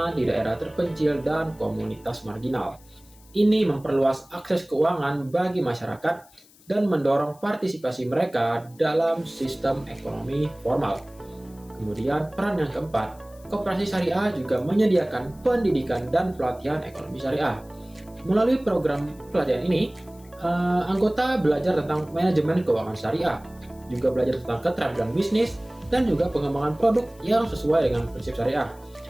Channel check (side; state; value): left; noise; hiss, 27 dB below the sound